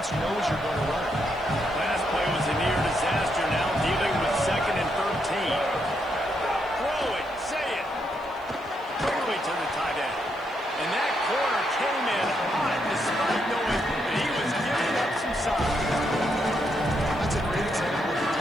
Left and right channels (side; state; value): left; noise; hiss, 29 dB below the sound